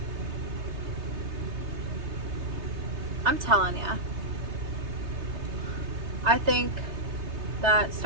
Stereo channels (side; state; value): left; late; 3.3 ms